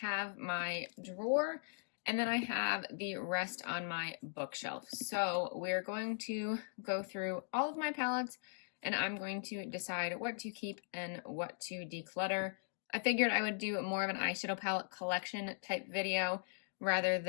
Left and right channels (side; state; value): right; silent; digital silence